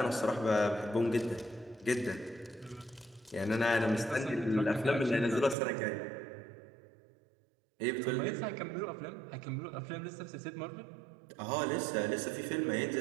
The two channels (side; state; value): left; drops out; at 5.6 s